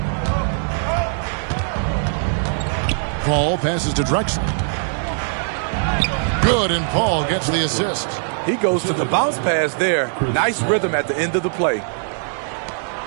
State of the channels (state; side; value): silent; left; 65 dB below the other